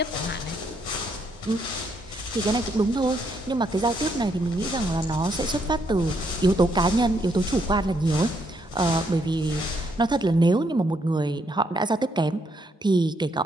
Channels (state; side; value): normal; both; correlation 0.74